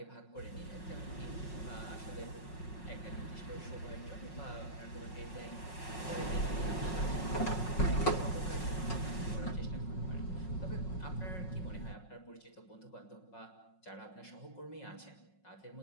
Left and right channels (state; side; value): late; right; 5.5 ms